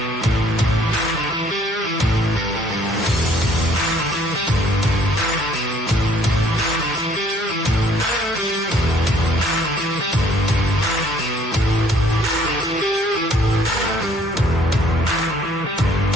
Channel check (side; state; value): both; normal; correlation 0.60